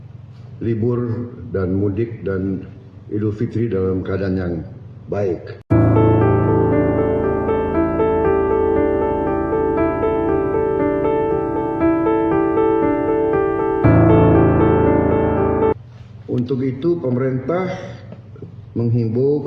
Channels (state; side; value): identical; both; correlation 1.00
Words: libur dan mudik dan Idul Fitri dalam keadaan yang baik. Untuk itu, pemerintah menghimbau